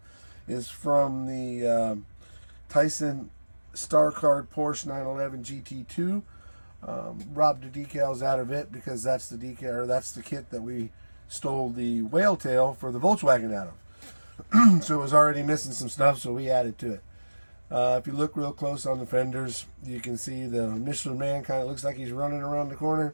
is from the Tyson Star Card Porsche 911 GT2. Robbed the decals out of it because that's the decal, or that's the kit that we stole the whale tail for the Volkswagen out of. So it was already missing some stuff, so we added to it. If you look real close on the fenders, you can see the Michelin Man kind of looks like he's running around the corner,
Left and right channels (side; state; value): both; inverted; correlation -1.00